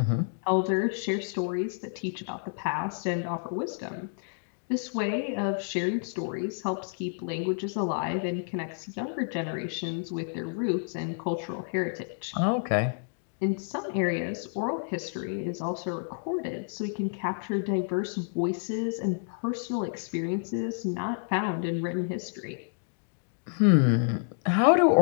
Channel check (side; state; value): right; silent; digital silence